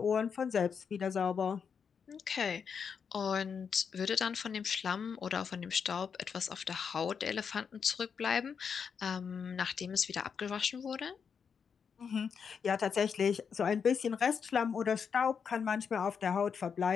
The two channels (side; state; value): right; quieter; 6.5 dB